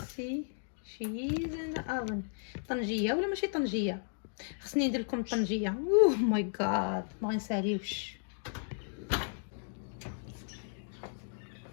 see she's in the oven. طنجيه ولا ماشي طنجيه؟ خصني ندير لكم طنجيه. اوه ماي جاد، ما غنساليوش.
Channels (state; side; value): silent; right; digital silence